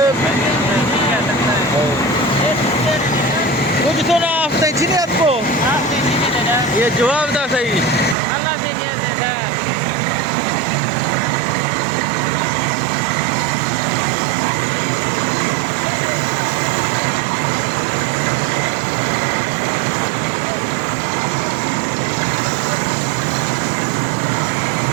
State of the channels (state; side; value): drops out; left; at 8.2 s